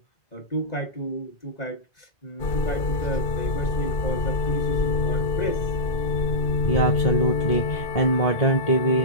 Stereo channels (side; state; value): right; late; 2.5 ms